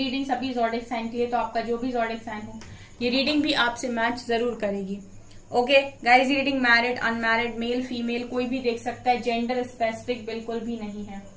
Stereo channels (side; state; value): both; identical; correlation 1.00